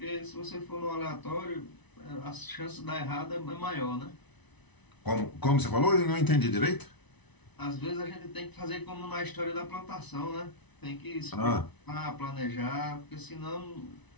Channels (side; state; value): right; late; 1.0 ms